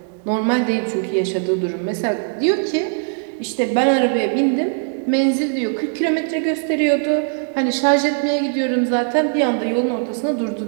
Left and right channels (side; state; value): left; silent; 57 dB below the other